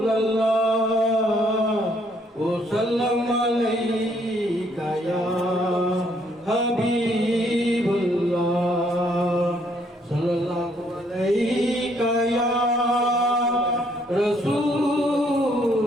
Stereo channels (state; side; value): normal; both; correlation 0.68